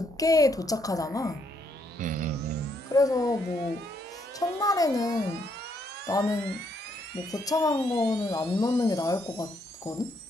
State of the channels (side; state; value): both; normal; correlation 0.73